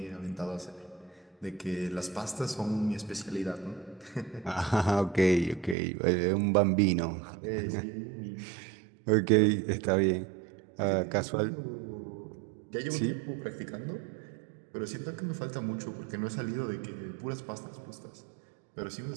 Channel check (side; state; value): left; drops out; at 5.8 s